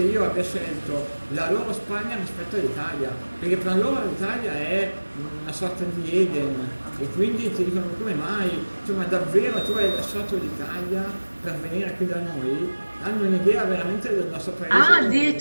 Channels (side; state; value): both; inverted; correlation -1.00